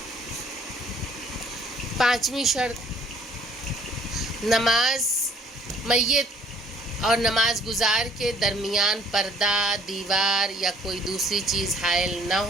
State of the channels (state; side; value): normal; both; correlation 0.59